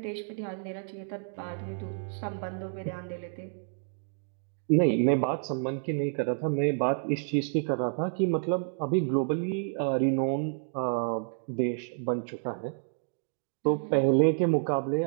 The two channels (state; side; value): silent; left; digital silence